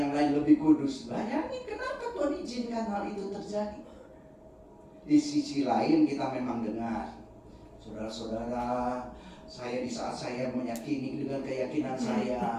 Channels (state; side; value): identical; both; correlation 1.00